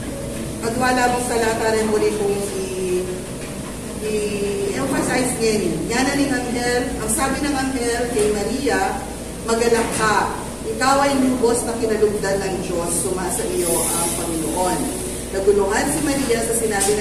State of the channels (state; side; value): identical; both; correlation 1.00